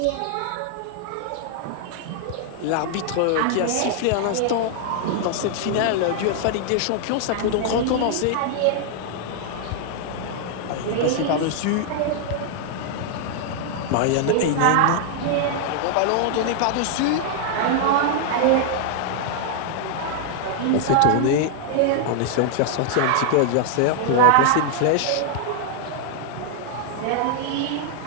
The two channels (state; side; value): different; both; correlation 0.00